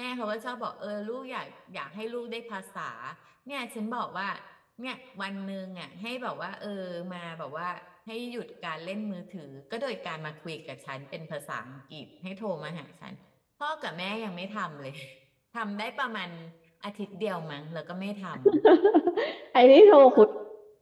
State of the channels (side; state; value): both; identical; correlation 1.00